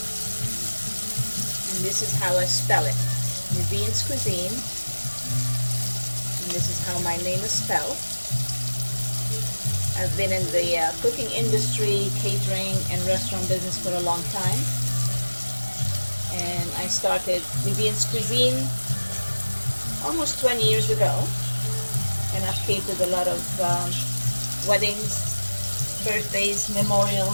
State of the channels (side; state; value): both; inverted; correlation -1.00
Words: And this is how I spell it, Nivine's Cuisine. And this is how my name is spelled. I've been in the cooking industry, catering, and restaurant business for a long time. And I started Nivine's Cuisine almost 20 years ago. And I've catered a lot of weddings, birthdays,